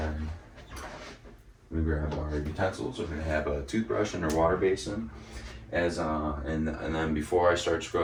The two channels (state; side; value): identical; both; correlation 1.00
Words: we grab our utensils. We're gonna have a toothbrush and our water basin. And then before I start